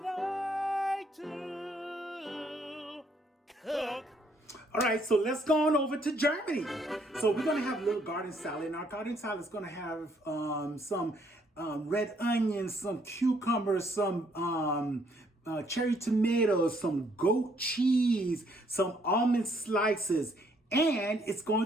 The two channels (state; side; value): normal; both; correlation 0.68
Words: to cook. All right, so let's go on over to Germany. So we're gonna have a little garden salad, and our garden salad is gonna have some red onions, some cucumbers, some cherry tomatoes, some goat cheese, some almond slices, and it's going